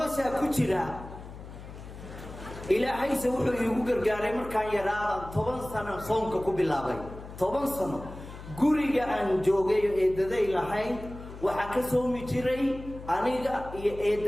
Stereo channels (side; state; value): left; noise; hum, 14 dB below the sound